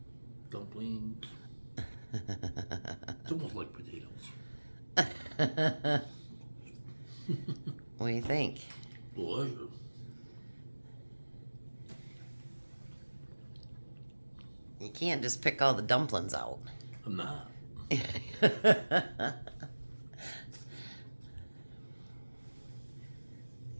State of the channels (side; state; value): both; inverted; correlation -1.00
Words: dumplings. It's almost like potatoes. What do you think? Delicious. You can't just pick all the dumplings out. I'm not.